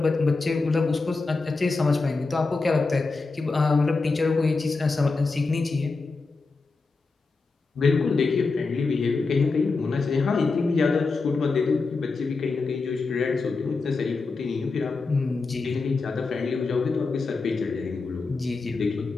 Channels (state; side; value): quieter; right; 4.0 dB